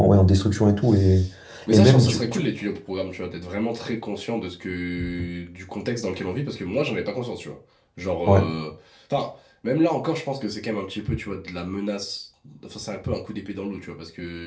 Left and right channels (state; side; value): identical; both; correlation 1.00